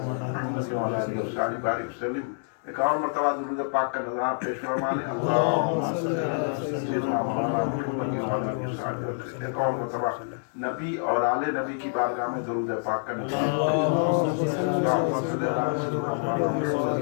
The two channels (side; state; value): right; silent; digital silence